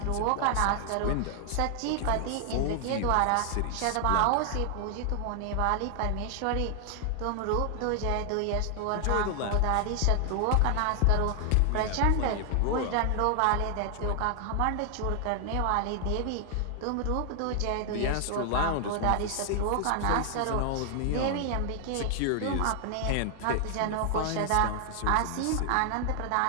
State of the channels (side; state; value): both; different; correlation 0.00